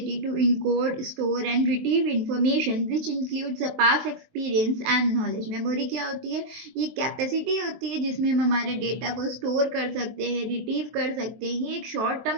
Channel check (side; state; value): left; late; 23 ms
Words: to encode, store and retrieve information which includes the past experience and knowledge. Memory क्या होती है? ये कैपेसिटी होती है जिसमें हम हमारे डेटा को स्टोर कर सकते हैं, रिट्रीव कर सकते हैं। ये एक शॉर्ट